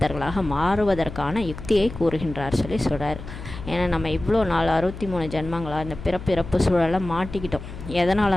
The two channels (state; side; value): noise; left; hum, 12 dB below the sound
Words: மாறுவதற்கான யுக்தியை கூறுகின்றார் சொல்லி சொல்கிறார். ஏன்னா நம்ம இவ்வளோ நாள் 63 ஜென்மங்களாக இந்த பிறப்பு சூழலை மாட்டிக்கிட்டோம்.